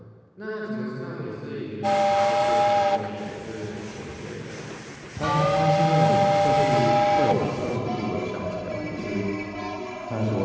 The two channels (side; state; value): both; identical; correlation 1.00